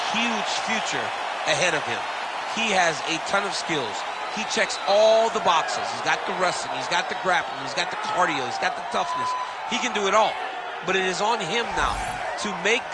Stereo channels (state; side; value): identical; both; correlation 1.00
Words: huge future ahead of him. He has a ton of skills. He checks all the boxes. He's got the wrestling, he's got the grappling, he's got the cardio, he's got the toughness. He can do it all. But it is on him now to make